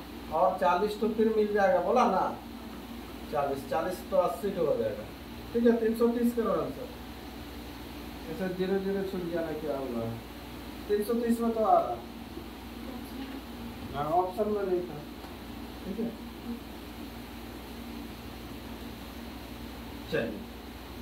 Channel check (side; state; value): both; identical; correlation 1.00